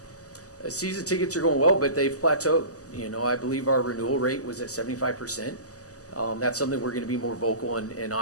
Season tickets are going well, but they've plateaued. You know, I believe our renewal rate was at 75%. That's something we're going to be more vocal and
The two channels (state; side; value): late; right; 0.66 ms